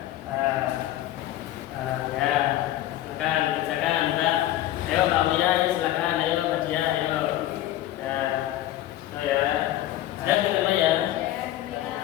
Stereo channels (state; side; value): quieter; right; 14.1 dB